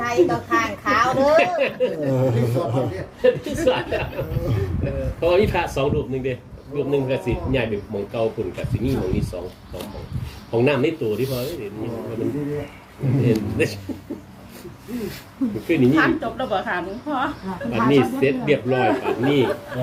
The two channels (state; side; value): identical; both; correlation 1.00